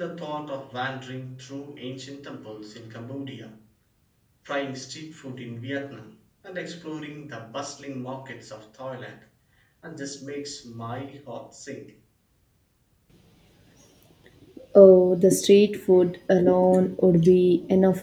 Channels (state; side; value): identical; both; correlation 1.00